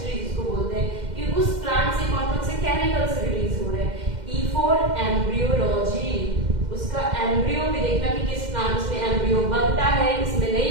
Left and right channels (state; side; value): late; left; 2.1 ms